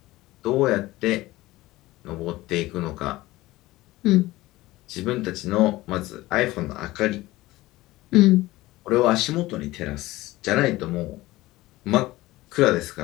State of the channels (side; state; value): right; quieter; 18.3 dB